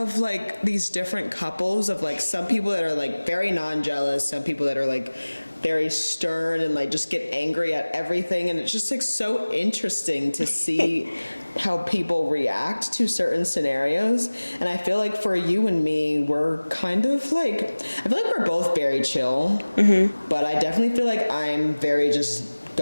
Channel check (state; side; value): inverted; both; correlation -1.00